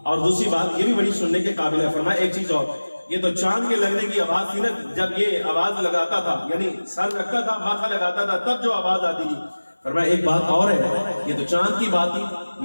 اور دوسری بات یہ بھی بڑی سننے کے قابل ہے. فرمایا ایک چیز اور, یہ تو چاند کے لگنے کی آواز تھی نا, جب یہ آواز لگاتا تھا یعنی سر رکھتا تھا ماتھا لگاتا تھا تب جو آواز آتی تھی. فرمایا ایک بات اور ہے, یہ تو چاند کی بات تھی,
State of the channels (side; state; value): both; inverted; correlation -1.00